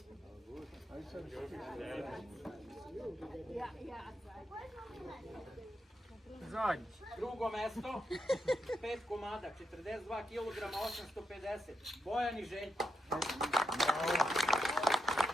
Zadnji. Drugo mesto, 5 komada, 42 kg, 850, Bojan i Željko.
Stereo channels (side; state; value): both; normal; correlation 0.84